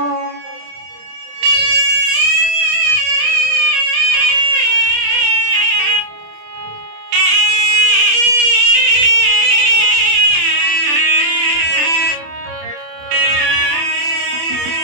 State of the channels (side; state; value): left; late; 27 ms